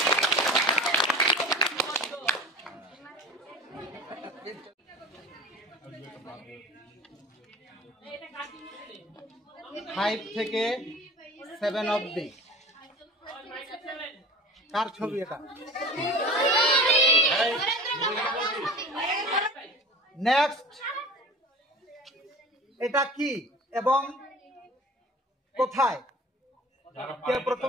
ফাইভ থেকে 7 অবধি কার ছবি এটা? নেক্সট, এটা কি এবং কোথায়? কে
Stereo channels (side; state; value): both; normal; correlation 0.39